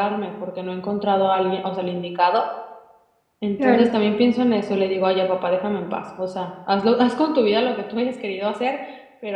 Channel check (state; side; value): identical; both; correlation 1.00